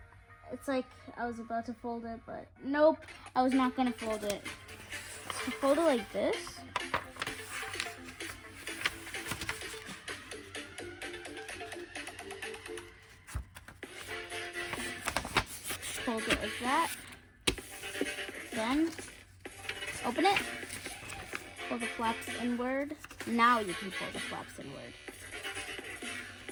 It's like I was about to fold it, but nope, I was not gonna fold it. So fold it like this. Fold it like that. Then open it. Pull the flaps inward. Now you can pull the flaps inward.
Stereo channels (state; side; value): identical; both; correlation 1.00